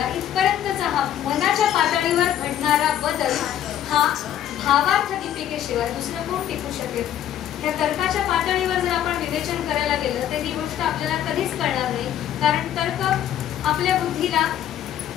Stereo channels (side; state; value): right; quieter; 11.0 dB